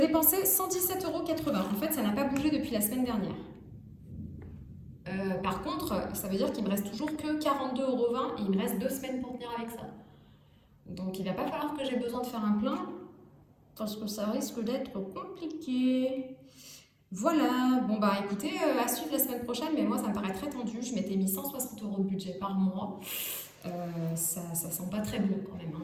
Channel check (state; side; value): identical; both; correlation 1.00